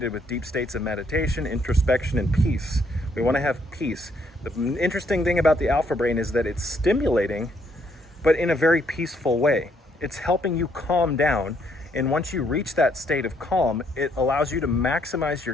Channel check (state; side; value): normal; both; correlation 0.70